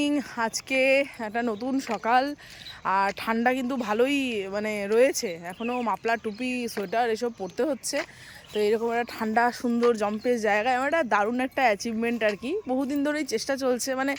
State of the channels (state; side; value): identical; both; correlation 1.00